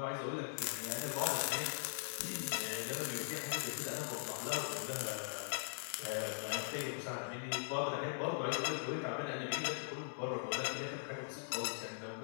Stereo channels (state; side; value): silent; right; 50 dB below the other